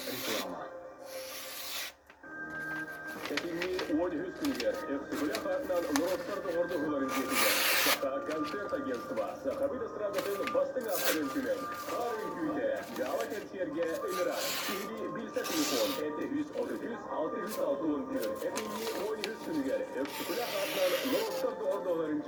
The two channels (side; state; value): both; identical; correlation 1.00